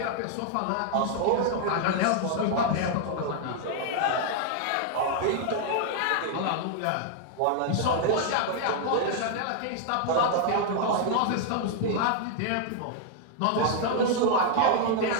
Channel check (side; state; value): both; different; correlation 0.00